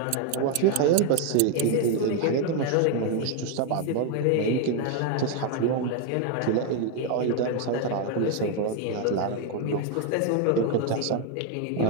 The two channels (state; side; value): different; both; correlation 0.01